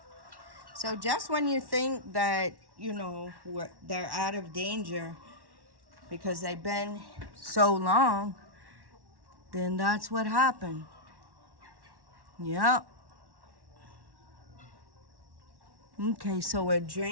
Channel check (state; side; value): late; left; 1.1 ms